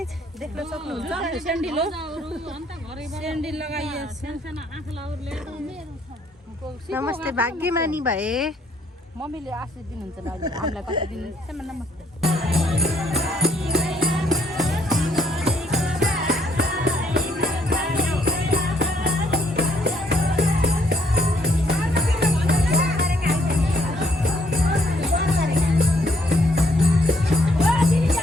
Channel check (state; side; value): normal; both; correlation 0.68